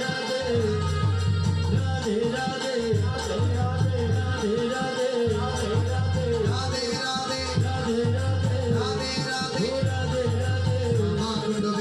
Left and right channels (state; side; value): identical; both; correlation 1.00